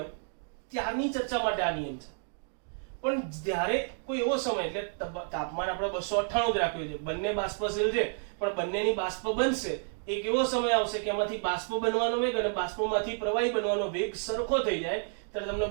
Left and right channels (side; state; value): left; silent; 57 dB below the other